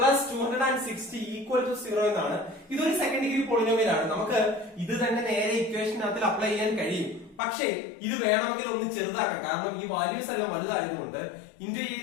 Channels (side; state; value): right; drops out; at 7.4 s